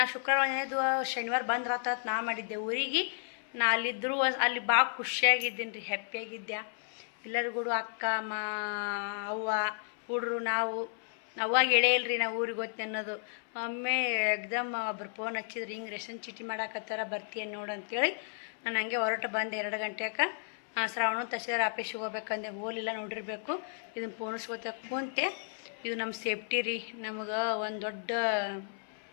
ಶುಕ್ರವಾರ ಶನಿವಾರ ಬಂದ್ರಾತ ನಾ ಮಾಡಿದ್ದೆ ಊರಿಗೆ. ನಾ ಅಲ್ಲಿದ್ದರೂ ಅಲ್ಲಿ ಭಾಳ ಖುಷಿಯಾಗಿದ್ದೀನಿ ರೀ, ಹ್ಯಾಪಿಯಾಗಿದ್ದೆ. ಎಲ್ಲರಿಗೂ ಅಕ್ಕ ಅವ್ವ ಹುಡ್ರು ನಾವು ಅವಾಗ ಹೇಳೇ ಇಲ್ರಿ ನಾವು ಊರಿಗೆ ಹೋಗ್ತೀನಿ ಅನ್ನೋದು. ಒಮ್ಮೆ ಎಕ್ದಮ್ ಒಬ್ರು ಫೋನ್ ಹಚ್ಚಿದ್ರು, ಹಿಂಗೆ ರೇಷನ್ ಚೀಟಿ ಮಾಡಾಕತ್ತಾರ ಬರ್ತೀಯನ್ ನೋಡು ಅಂತೇಳಿ. ನಾನು ಹಂಗೆ ಹೊರಟು ಬಂದೆ 2 ಗಂಟೆಗೆ. ಶ್ರಾವಣ ತಹಸೀಲ್ದಾರ್ ಆಫೀಸಿಗೆ ಹೋಗ್ಬೇಕಂದೆ, ಹೋಲಿಲ್ಲ ನೋಡಿರಬೇಕು. ಇದನ್ನು ಪೋಣಿಸ್ಕೋತ ಕುಂತೆ. ಇದು ನಮ್ಮ ಸೇಫ್ಟಿ ರೀ, ನಮಗೆ ಒಂದು ದೊಡ್ಡ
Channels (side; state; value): right; silent; 56 dB below the other